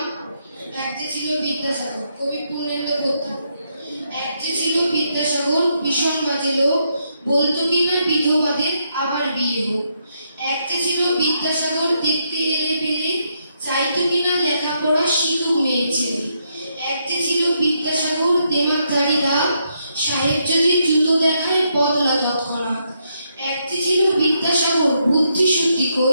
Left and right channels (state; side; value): inverted; both; correlation -0.78